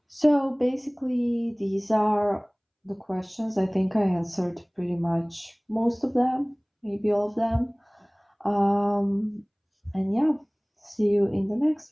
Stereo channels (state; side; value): identical; both; correlation 1.00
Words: So basically, these are the questions. I think I answered pretty much most of them, maybe all of them. And yeah, see you in the